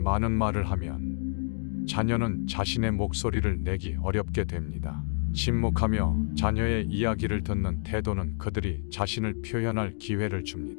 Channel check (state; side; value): silent; right; digital silence